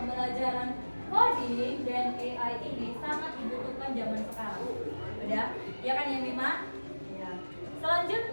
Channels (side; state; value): both; inverted; correlation -1.00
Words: coding dan AI ini sangat dibutuhkan zaman sekarang. Udah? Ya kan ya Mima? Ya.